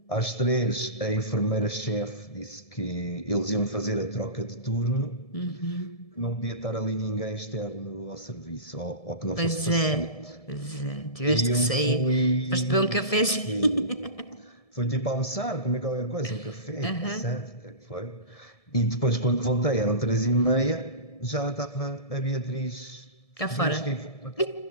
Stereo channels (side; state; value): right; late; 1.7 ms